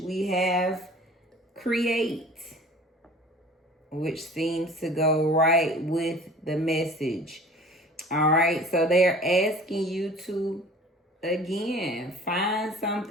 We have create, which seems to go right with the message. All right, so they're asking you to, again, find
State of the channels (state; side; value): normal; both; correlation 0.45